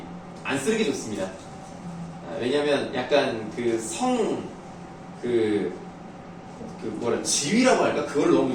안 쓰는 게 좋습니다. 왜냐면 약간 지위라고 할까? 그걸 너무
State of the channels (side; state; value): both; identical; correlation 1.00